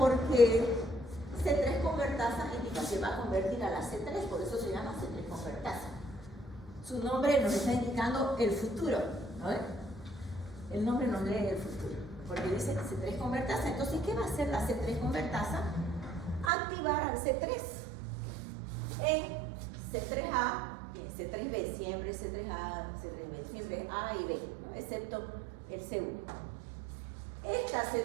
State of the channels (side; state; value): left; drops out; at 16.5 s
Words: C3 convertasa indica que va a convertir a la C3, por eso se llama C3 convertasa. Su nombre nos está indicando el futuro, ¿no? El nombre nos lee el futuro, porque dice C3 convertasa. Entonces, ¿qué va a hacer la C3 convertasa? Activar al C3 en C3A y en C3B, siempre C3A, C3B, siempre A y B, ¿no? Excepto el C1. Esta